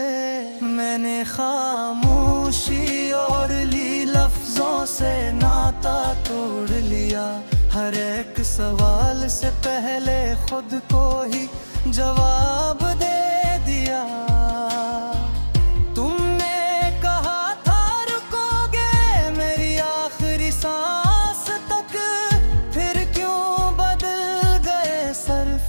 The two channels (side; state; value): both; inverted; correlation -1.00